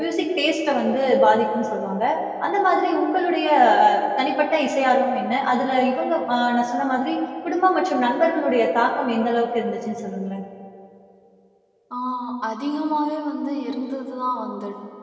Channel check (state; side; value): identical; both; correlation 1.00